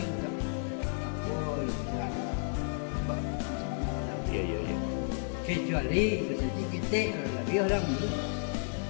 Iya, iya, iya. Kecuali seperti kita lebih orang dulu.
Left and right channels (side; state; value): right; silent; 56 dB below the other